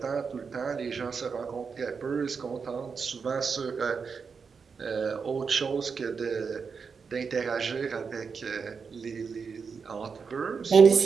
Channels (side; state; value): left; quieter; 5.6 dB